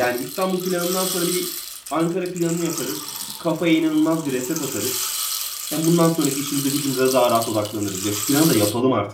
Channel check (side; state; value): both; identical; correlation 1.00